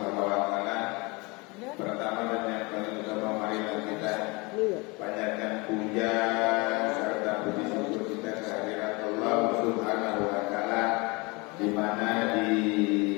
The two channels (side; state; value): right; quieter; 26.8 dB